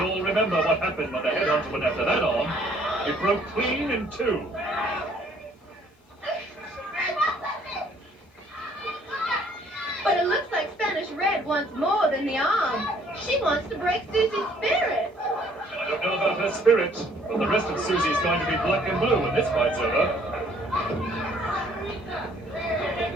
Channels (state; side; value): normal; both; correlation 0.61